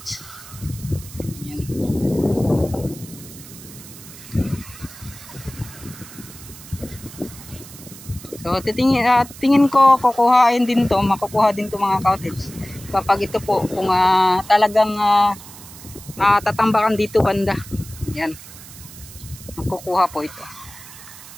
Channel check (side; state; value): right; noise; hiss, 17 dB below the sound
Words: So tingin ko kukuhain din to, makukuha din to mga cottage kapag ito po kung talagang tatambakan dito banda. Yan, makukuha po ito.